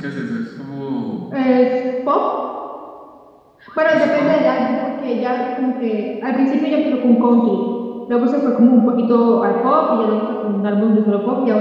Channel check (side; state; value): both; identical; correlation 1.00